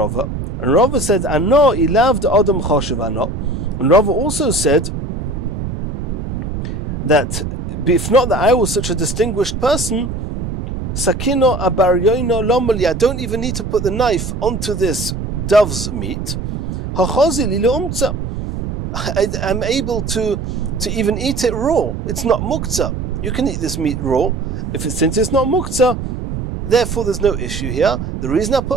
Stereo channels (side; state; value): right; noise; rumble, 5 dB below the sound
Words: and Rava said, "Ano ilav de adam choshev ano," and Rava also said that if not that I was such a distinguished person, sakino abaryoino lomali, I don't even need to put the knife onto this dove's meat. Hachozi li leumtza, I'm able to even eat it raw. It's not muktzah. You can eat this meat raw. Since it's not muktzah, therefore there's no issue here. The reason I